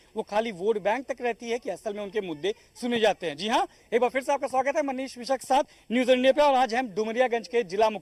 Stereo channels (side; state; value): both; identical; correlation 1.00